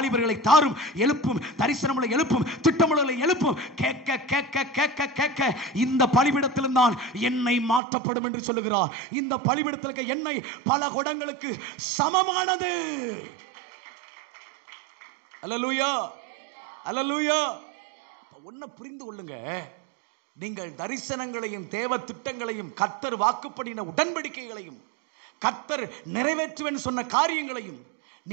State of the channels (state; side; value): drops out; left; at 7.8 s